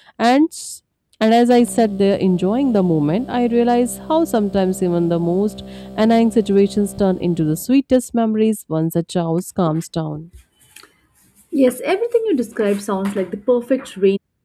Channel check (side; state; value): both; identical; correlation 1.00